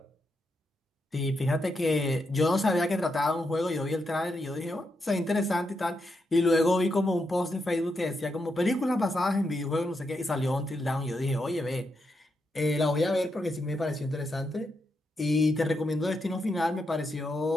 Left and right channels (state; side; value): normal; both; correlation 0.83